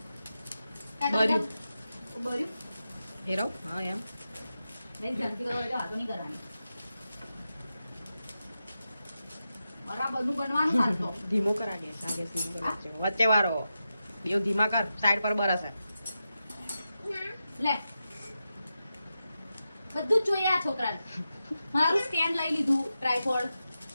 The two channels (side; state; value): both; inverted; correlation -0.90